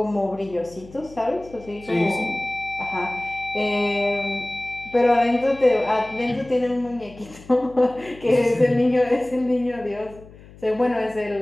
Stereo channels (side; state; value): left; noise; hum, 21 dB below the sound